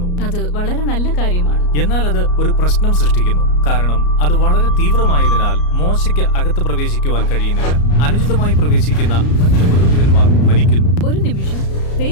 അത് വളരെ നല്ല കാര്യമാണ്. എന്നാൽ അത് ഒരു പ്രശ്നം സൃഷ്ടിക്കുന്നു. കാരണം അത് വളരെ തീവ്രമായതിനാൽ മോശയ്ക്ക് അകത്ത് പ്രവേശിക്കുവാൻ കഴിയുന്നില്ല. അനുചിതമായി പ്രവേശിക്കുന്ന മറ്റു പുരോഹിതന്മാർ മരിക്കുന്നു. ഒരു നിമിഷം,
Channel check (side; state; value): right; late; 34 ms